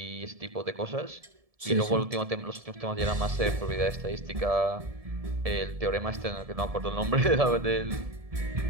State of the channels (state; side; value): late; left; 1.7 ms